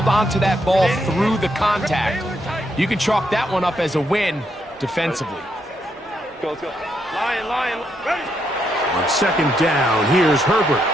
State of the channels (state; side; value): normal; both; correlation 0.78